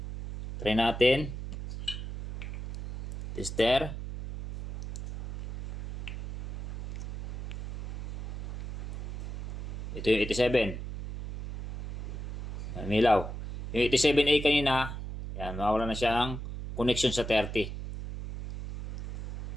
Try natin. Tester. Ito yung 87. Yan, milaw. Yung 87A kanina, yan, mawala na siyang connection sa 30.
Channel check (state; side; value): noise; right; hum, 7 dB below the sound